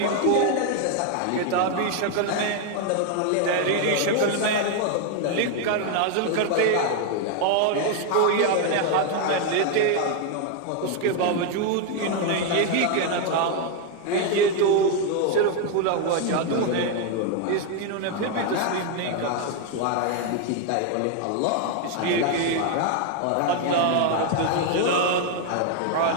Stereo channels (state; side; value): different; both; correlation 0.01